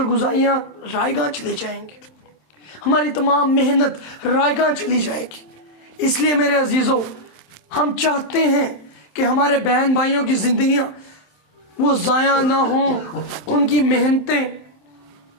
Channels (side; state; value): right; late; 27 ms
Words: گزاریاں رائے گاں چلی جائیں گی، ہماری تمام محنت رائے گاں چلی جائے گی۔ اس لیے میرے عزیزوں، ہم چاہتے ہیں کہ ہمارے بہن بھائیوں کی زندگیاں وہ ضائع نہ ہوں، ان کی محنتیں،